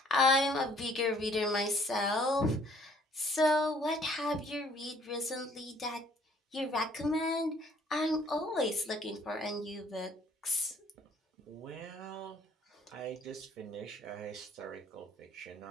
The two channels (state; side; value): normal; both; correlation 0.59